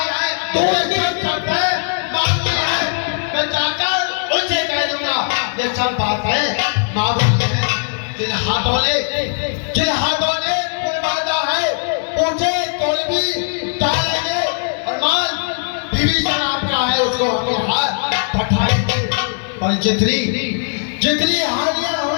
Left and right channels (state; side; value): silent; right; digital silence